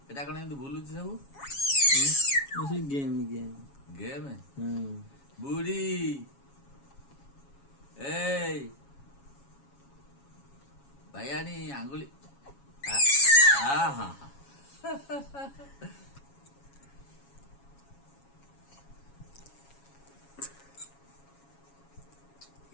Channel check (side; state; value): right; late; 7.2 ms